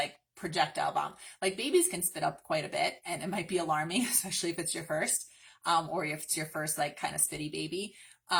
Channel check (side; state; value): both; identical; correlation 1.00